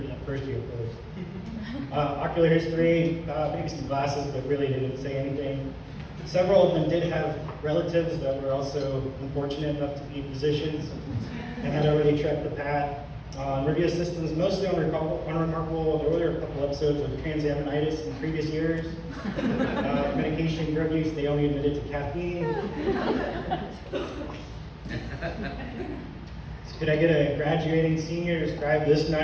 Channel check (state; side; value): identical; both; correlation 1.00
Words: that first year first. Ocular history, maybe some glasses, but really didn't say anything. Several of them did have relatives that were also unfortunate enough to be physicians and had already trekked the path. Review systems, mostly unremarkable. There were a couple episodes of transaminitis in previous years. Medication, drug use, they only admitted to caffeine. So could I get a graduating senior to describe this